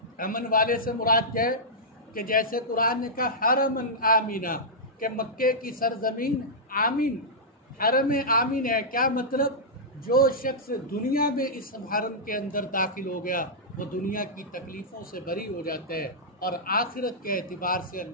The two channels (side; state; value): both; normal; correlation -0.11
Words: امن والے سے مراد کیا ہے کہ جیسے قرآن نے کہا حرمًا آمینہ، کہ مکے کی سرزمین آمین، حرم آمین ہے. کیا مطلب؟ جو شخص دنیا میں اس حرم کے اندر داخل ہو گیا وہ دنیا کی تکلیفوں سے بری ہو جاتا ہے، اور آخرت کے اعتبار سے